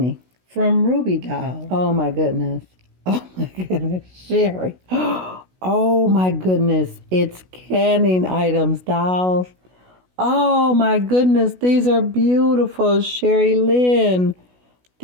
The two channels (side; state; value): left; late; 16 ms